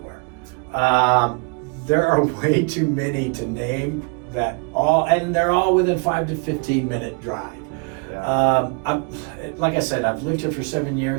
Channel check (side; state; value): left; quieter; 34.3 dB